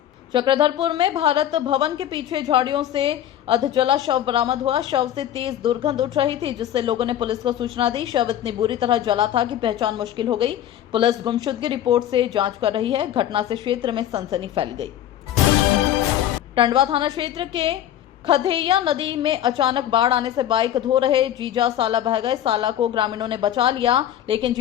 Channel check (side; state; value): right; quieter; 11.3 dB